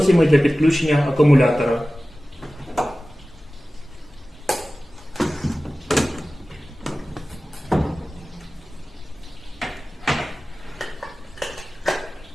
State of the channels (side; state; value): both; normal; correlation 0.96